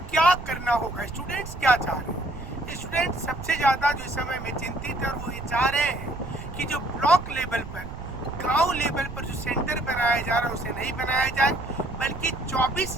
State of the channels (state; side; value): noise; right; rumble, 10 dB below the sound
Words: क्या करना होगा। स्टूडेंट्स क्या चाह रहे हैं? स्टूडेंट्स सबसे ज़्यादा जो इस समय में चिंतित है, वो ये चाह रहे हैं कि जो ब्लॉक लेवल पर, गांव लेवल पर जो सेंटर बनाया जा रहा है उसे नहीं बनाया जाए, बल्कि